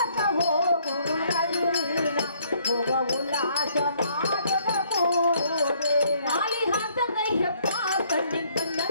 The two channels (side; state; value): both; inverted; correlation -0.65